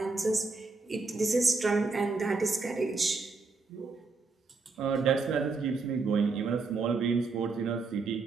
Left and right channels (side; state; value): left; quieter; 4.1 dB